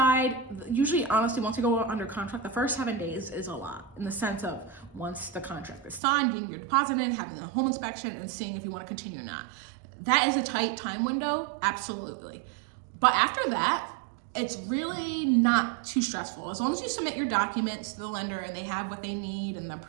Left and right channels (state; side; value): drops out; left; at 6.0 s